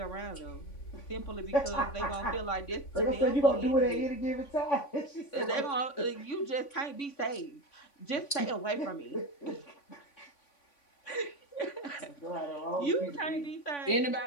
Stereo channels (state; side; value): late; right; 3.5 ms